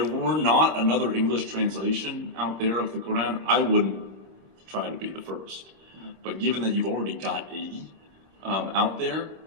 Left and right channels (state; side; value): late; left; 26 ms